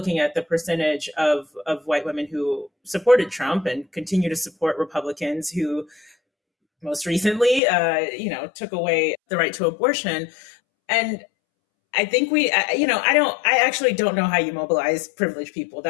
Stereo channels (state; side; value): drops out; right; at 7.6 s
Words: at the percentage of white women who supported Trump and continue to support Republicans who most recently, took away the right to abortion. And I think I actually don't know how you mobilize privileged people.